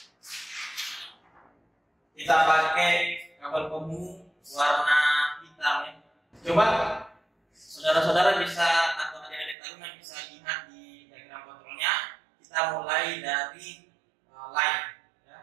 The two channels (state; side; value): drops out; left; at 9.6 s